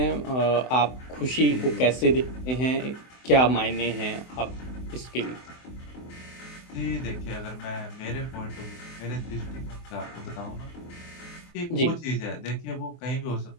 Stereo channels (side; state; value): right; late; 24 ms